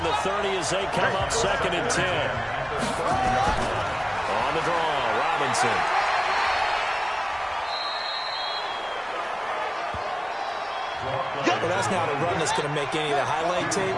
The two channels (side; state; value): both; identical; correlation 1.00